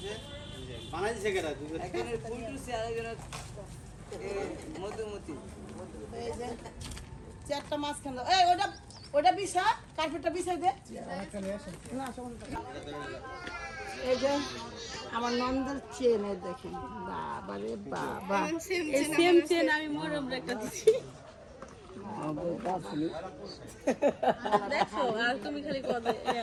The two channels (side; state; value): both; identical; correlation 1.00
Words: চারটা মাছ খালো। এই ওটা ওটা বিছা, কার্পেটটা বিছাই দে। না এই যে আমার নন্দের চেন, এই দেখেন। বাবা রে বাবা, এই সেম চেন আমি মরম রেখে দিছি। দেখো, আর তুমি খালি কবে